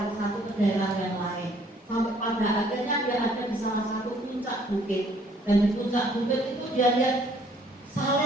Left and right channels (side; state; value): both; normal; correlation 0.61